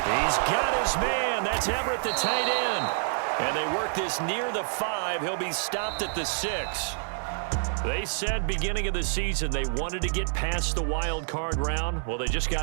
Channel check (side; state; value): left; silent; digital silence